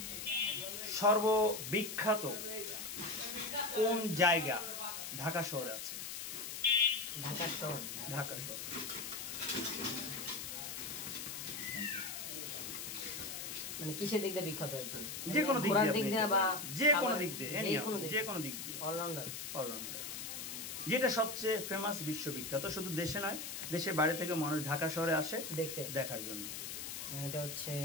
সর্ববিখ্যাত কোন জায়গা ঢাকা শহরে আছে? ঢাকা শহর। ঢাকা শহর মানে কিসের দিক দিয়ে বিখ্যাত? যে কোনো দিক দিয়ে বা যে কোনো দিক দিয়ে, যে কোনো দিক দিয়ে, অলরাউন্ডার। অলরাউন্ডার। যেটা সবচেয়ে ফেমাস, বিশ্ববিখ্যাত, শুধু দেশে নয়, দেশের বাইরে থেকে মানুষ ঢাকা শহরে আসে দেখতে, দেখার জন্য। এটা হচ্ছে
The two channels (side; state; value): left; noise; hiss, 6 dB below the sound